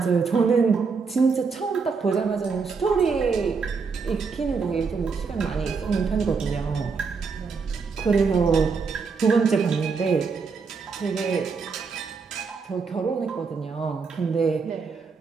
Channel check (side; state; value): left; quieter; 5.1 dB